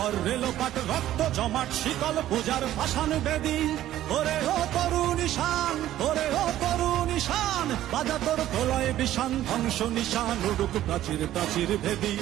রেলোপাট, রক্ত জমাট শিকল পূজার ভাসান বেদি। ওরে ও তরুণ ঈশান, ওরে ও তরুণ ঈশান, বাজা তোর প্রলয় বিষান, ধ্বংস নিশান উড়ুক প্রাচীর প্রাচীর ভেদি।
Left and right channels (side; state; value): left; quieter; 13.2 dB